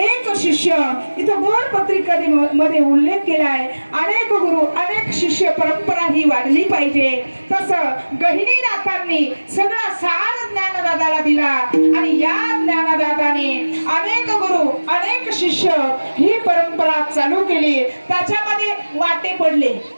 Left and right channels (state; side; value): inverted; both; correlation -1.00